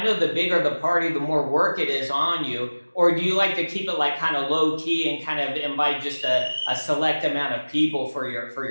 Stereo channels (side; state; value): both; inverted; correlation -1.00